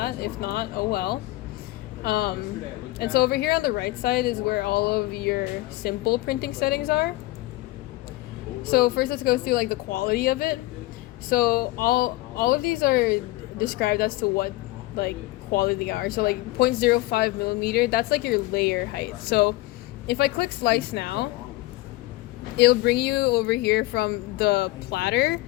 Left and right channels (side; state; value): right; quieter; 19.0 dB